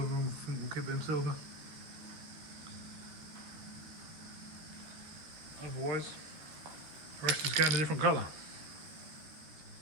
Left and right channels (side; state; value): left; late; 13 ms